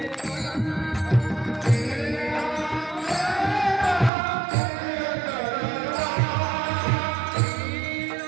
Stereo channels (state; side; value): drops out; left; at 4.1 s